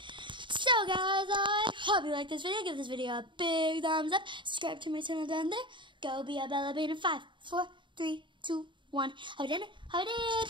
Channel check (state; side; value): late; left; 0.23 ms